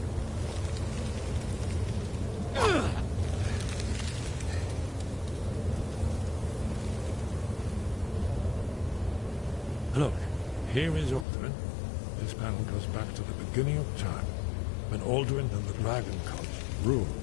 Look, here is Aldrin. This panel goes back to the beginning of time, when Aldrin and the Dragon Cult ruled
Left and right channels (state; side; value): drops out; right; at 11.2 s